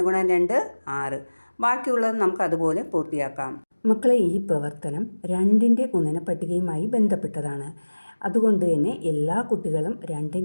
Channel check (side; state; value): both; inverted; correlation -1.00